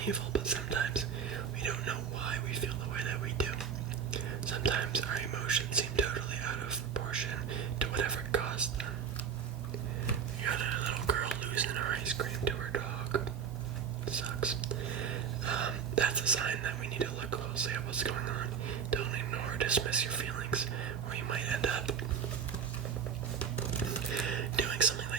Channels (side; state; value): left; quieter; 7.3 dB